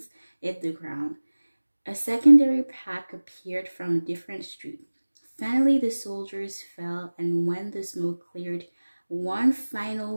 hit the ground. A secondary pack appeared from a different street. Finally, the soldiers fell, and when the smoke cleared, one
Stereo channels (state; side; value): inverted; both; correlation -1.00